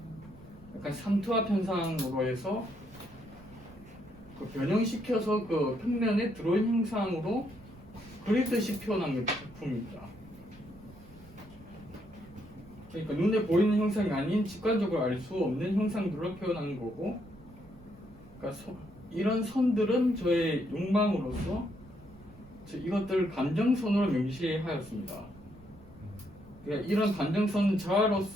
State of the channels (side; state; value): right; noise; rumble, 23 dB below the sound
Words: 약간 삼투압 현상으로 해서 그 변형시켜서 그 평면에 드로잉 형상으로 그리듯이 표현한 작품입니다. 그러니까 눈에 보이는 형상이 아닌 직관적으로 알 수 없는 형상들로 표현하는 거고, 그러니까 이런 선들은 저의 욕망으로서 이것들 감정선으로 명시하였습니다. 그러니까 이런 감정선은